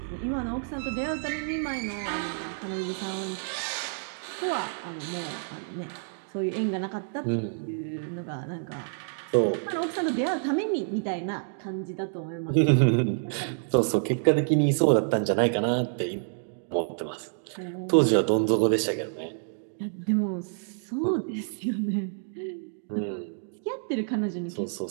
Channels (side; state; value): left; silent; digital silence